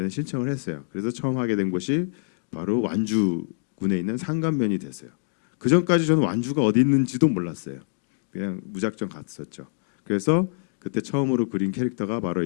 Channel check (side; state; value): right; silent; digital silence